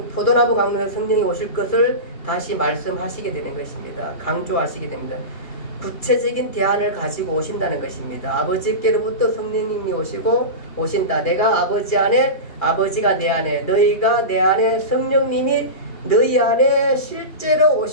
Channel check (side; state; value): right; late; 2.4 ms